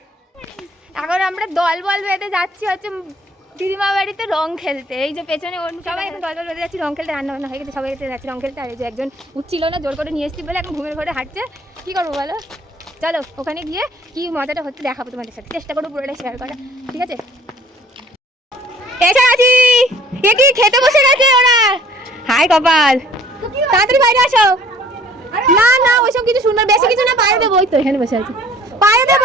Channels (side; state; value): both; normal; correlation 0.54